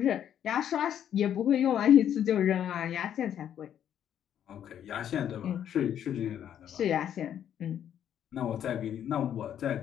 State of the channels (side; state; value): right; quieter; 9.8 dB